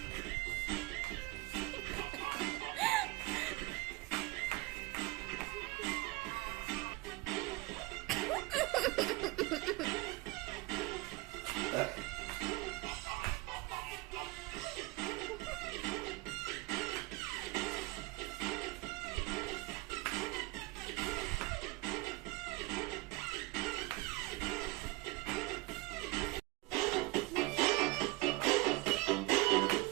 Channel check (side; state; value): left; quieter; 22.0 dB